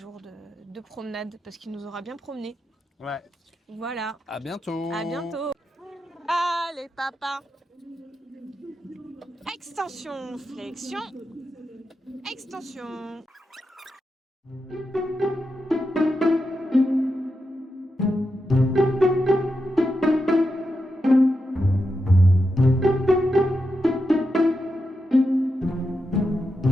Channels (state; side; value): normal; both; correlation 0.87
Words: de promenade parce qu'il nous aura bien promené. Ouais. Voilà. À bientôt. À bientôt. Allez, papa. Extension, flexion. Extension.